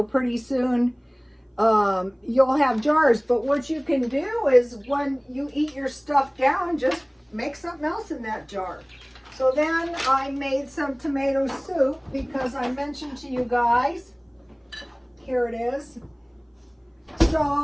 pretty soon you'll have jars. But what you can do is when you eat your stuff down, just make something else in that jar. So then I made some tomato soup because I mentioned to you guys, here it is.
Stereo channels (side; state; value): both; identical; correlation 1.00